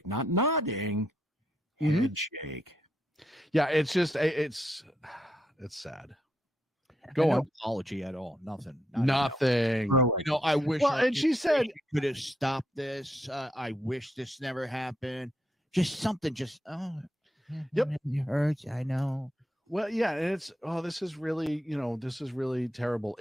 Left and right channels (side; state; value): both; normal; correlation 0.79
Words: Not nodding. Head shake. Yeah, it's just it's sad. Go on. No apology at all. Nothing. Nothing. I wish. Well, and she said could have stopped this. I wish this never happened. Just something. Just yep. It hurts. I know. Well, yeah, and it's this is really terrible.